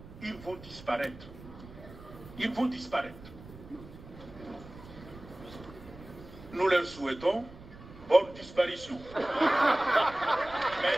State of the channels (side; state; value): right; noise; rumble, 17 dB below the sound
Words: ils vont disparaître. Ils vont disparaître. Nous leur souhaitons bonne disparition. Mais